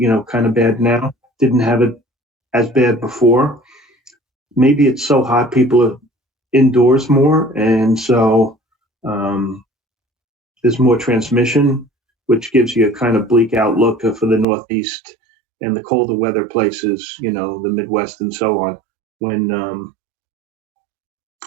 kind of bad now didn't have it as bad before. Maybe it's so hot, people are indoors more. And so there's more transmission, which gives you a kind of bleak outlook for the Northeast and the colder weather places, the Midwest and so on, when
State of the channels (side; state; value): left; drops out; at 14.5 s